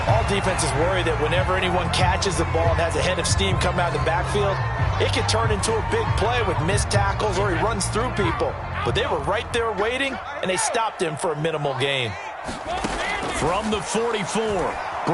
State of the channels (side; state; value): both; identical; correlation 1.00